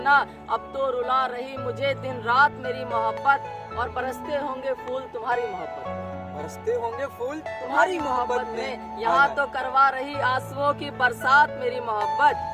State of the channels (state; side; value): identical; both; correlation 1.00